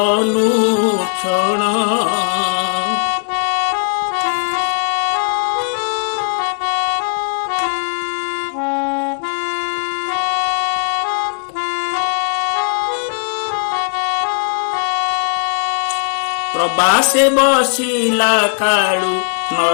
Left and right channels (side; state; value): right; silent; 68 dB below the other